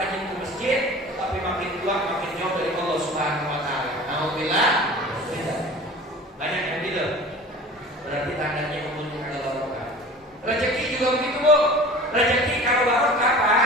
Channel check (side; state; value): both; normal; correlation 0.40